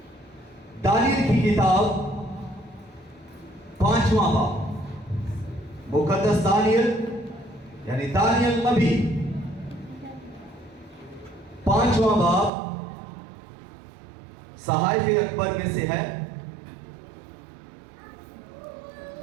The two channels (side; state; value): left; drops out; at 12.5 s